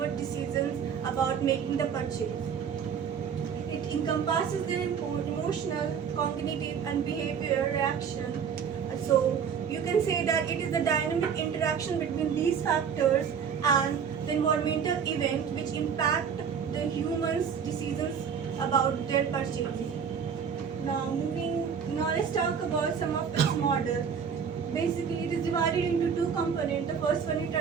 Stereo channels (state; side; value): quieter; left; 7.1 dB